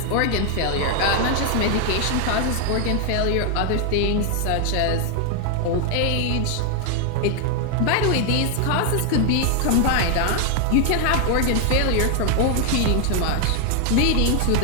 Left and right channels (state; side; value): different; both; correlation 0.00